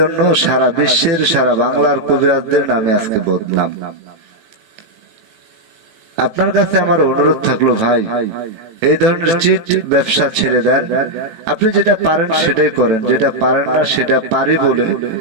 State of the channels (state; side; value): late; left; 18 ms